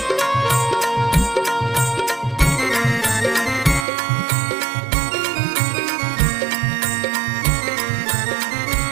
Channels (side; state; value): left; drops out; at 3.9 s